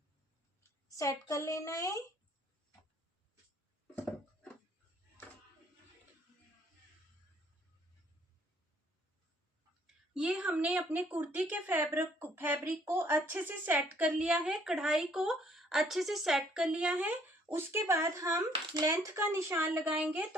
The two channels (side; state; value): both; normal; correlation 0.63